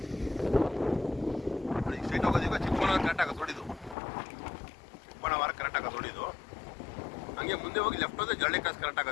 ಸೈಟ್ ಹೋಗೋದೀಗ ಚಿಕ್ಕಬಳ್ಳಾಪುರ ಕರೆಕ್ಟ್ ಆಗೋದು ನೋಡಿದ್ದು. ಚಿಕ್ಕಬಳ್ಳಾಪುರ ಕರೆಕ್ಟ್ ಆಗೋದು ನೋಡಿದ್ದು. ಹಂಗೆ ಮುಂದೆ ಹೋಗಿ ಲೆಫ್ಟ್ ಹೋದ್ರೆ ಜರಳಿ ಕ್ರಾಸ್ ಕರೆಕ್ಟ್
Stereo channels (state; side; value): drops out; right; at 4.0 s